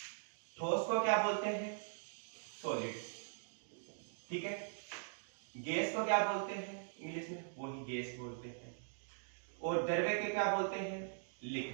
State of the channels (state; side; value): silent; left; digital silence